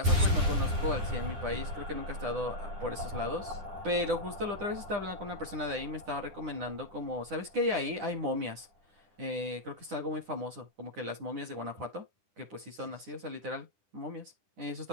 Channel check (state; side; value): late; left; 9.9 ms